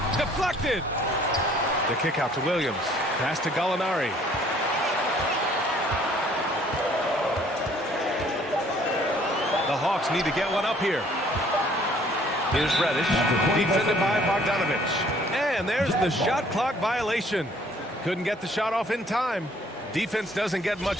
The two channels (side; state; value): both; normal; correlation 0.59